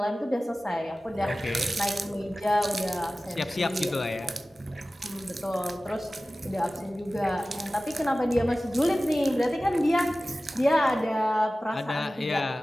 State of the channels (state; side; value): normal; both; correlation 0.96